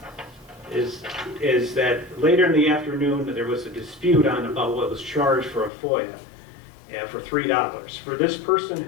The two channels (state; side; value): drops out; right; at 5.7 s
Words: that later in the afternoon there was a dispute on about what was charged for a FOIA for $3. For this person